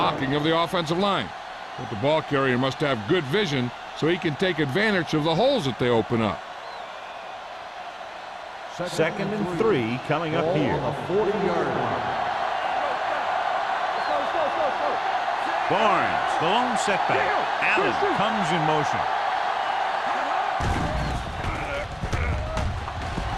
of the offensive line. But the ball carrier must have good vision so he can take advantage of the holes that they open up. 2nd and 3 coming up here. On the 40-yard line. Barnes, the lone setback. Allen comes in motion.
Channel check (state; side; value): identical; both; correlation 1.00